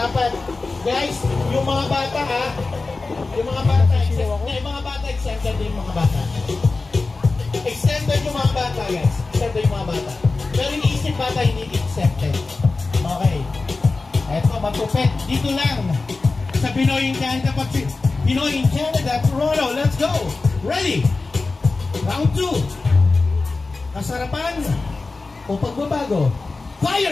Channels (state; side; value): quieter; right; 3.7 dB